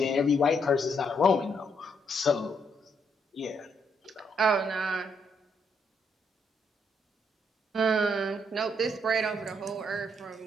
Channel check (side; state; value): both; normal; correlation 0.74